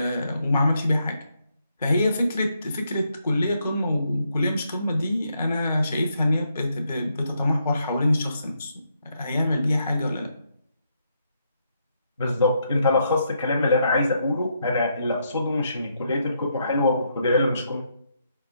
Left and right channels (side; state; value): both; inverted; correlation -0.77